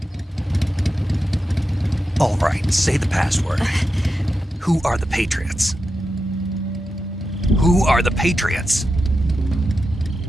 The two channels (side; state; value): both; normal; correlation 0.89